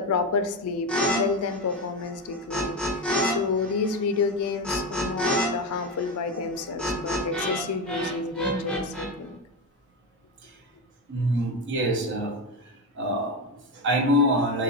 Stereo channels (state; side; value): normal; both; correlation 0.15